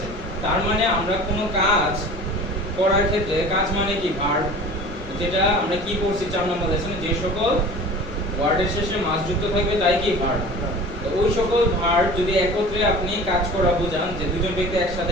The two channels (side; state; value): both; normal; correlation 0.40